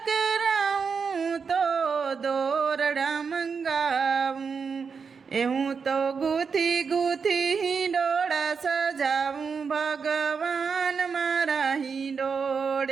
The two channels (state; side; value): quieter; left; 5.7 dB